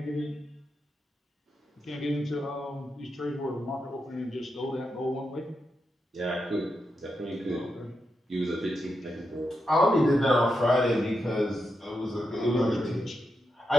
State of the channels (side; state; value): both; normal; correlation 0.85